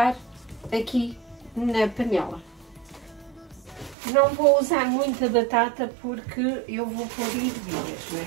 aqui na panela. Não vou usar muita batata porque eu vou pôr ervilhas, não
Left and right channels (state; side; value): drops out; left; at 4.0 s